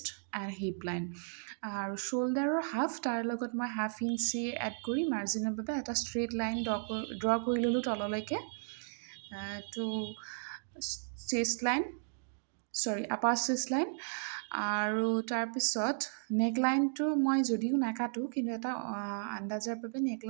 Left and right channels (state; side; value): silent; left; digital silence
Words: এণ্ড হিপ লাইন আৰু শ্ব'ল্ডাৰৰ হাফ, তাৰ লগত মই 1/2 ইঞ্চি এড কৰি মাৰ্জিনৰ বাবে এটা ষ্ট্ৰেইট লাইন ড্ৰ কৰি ল'লোঁ তললৈকে। তো আপাৰ চেষ্ট লাইন আৰু তাৰপিছত নেকলাইনটো মই যদিও নাকাটো, কিন্তু এটা আন্দাজৰ বাবে